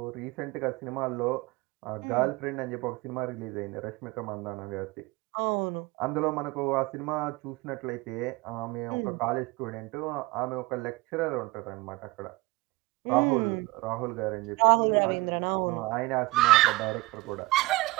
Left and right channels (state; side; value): quieter; left; 21.2 dB